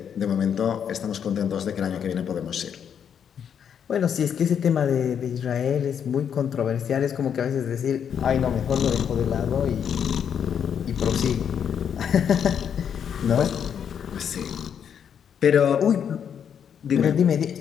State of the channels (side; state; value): right; quieter; 8.1 dB